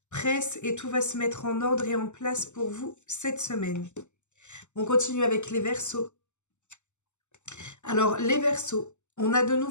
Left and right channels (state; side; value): late; right; 0.83 ms